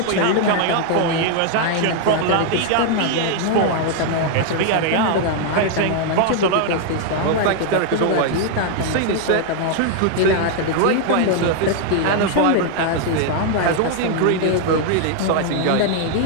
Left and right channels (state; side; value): different; both; correlation 0.00